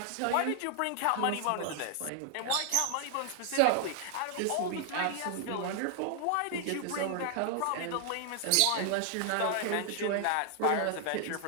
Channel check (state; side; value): different; both; correlation 0.00